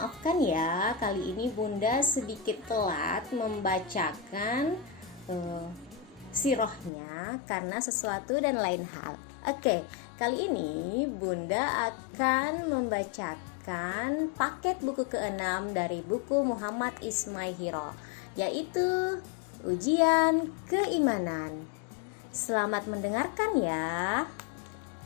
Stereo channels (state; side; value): drops out; right; at 6.9 s